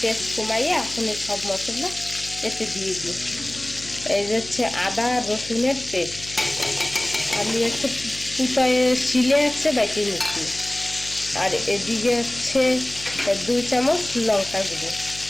পেস্ট কমাইয়ে এখন সব মশলা এতে দিয়ে দিই। এই যে হচ্ছে আদা রসুনের পেস্ট আমি একটু কুটায় শিলে হচ্ছে বেটে নিচ্ছি। আর এদিকে হচ্ছে 2 চামচ লঙ্কা গুঁড়ো,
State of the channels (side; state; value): left; noise; hum, 16 dB below the sound